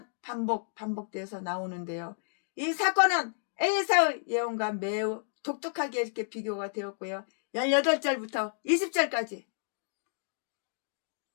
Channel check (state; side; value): silent; right; digital silence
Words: 반복돼서 나오는데요. 이 사건은 에사의 예언과 매우 독특하게 이렇게 비교가 되었고요. 18절부터 20절까지